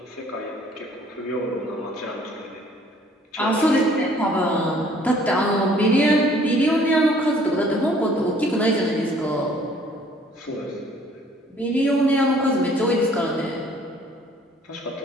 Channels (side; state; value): both; normal; correlation 0.58